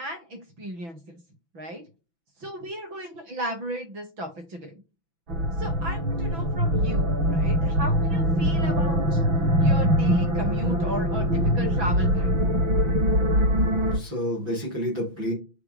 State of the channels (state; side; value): late; left; 6.0 ms